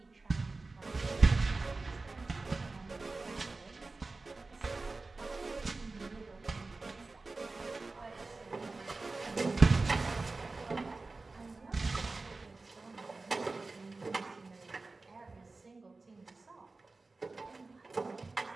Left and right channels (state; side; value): quieter; left; 3.6 dB